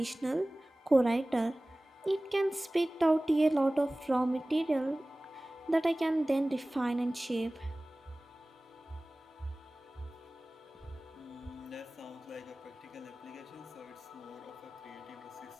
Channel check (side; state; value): both; normal; correlation 0.98